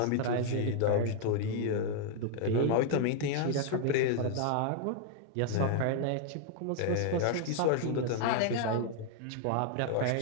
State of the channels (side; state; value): both; different; correlation 0.00